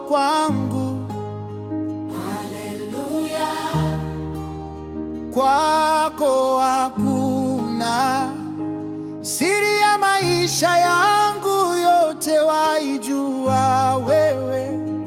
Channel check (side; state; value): both; identical; correlation 1.00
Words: kwangu. Haleluya. Kwako hakuna siri ya maisha yangu, yote waijua wewe